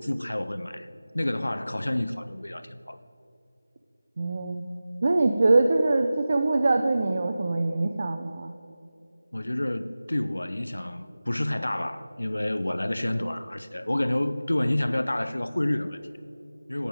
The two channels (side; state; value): both; inverted; correlation -0.96